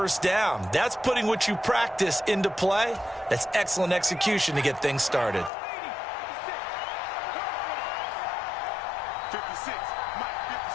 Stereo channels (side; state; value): right; drops out; at 5.5 s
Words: down. That's putting what you practice into play. That's excellent execution to get things started. 56. Mike,